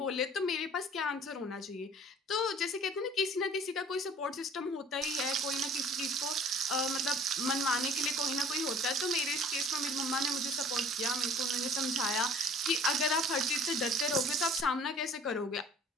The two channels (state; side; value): normal; both; correlation 0.50